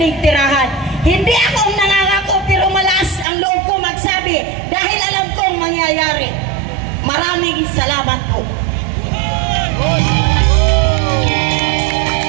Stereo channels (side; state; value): left; drops out; at 3.2 s